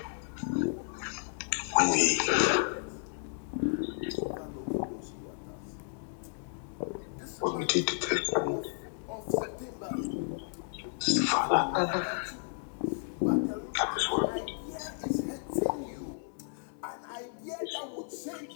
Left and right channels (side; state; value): right; silent; digital silence